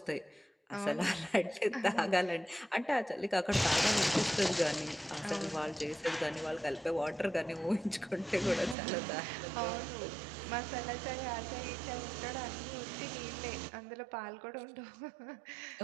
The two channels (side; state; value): left; drops out; at 8.8 s